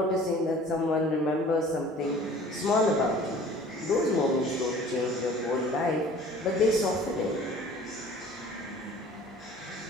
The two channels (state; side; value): normal; both; correlation 0.48